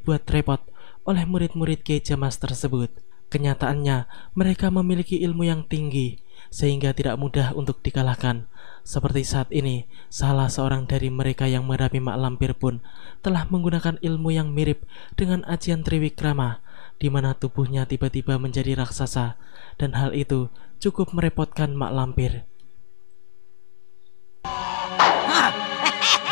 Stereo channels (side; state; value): right; silent; digital silence